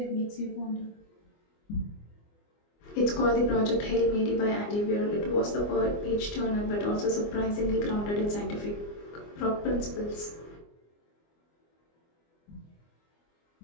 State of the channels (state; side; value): late; right; 24 ms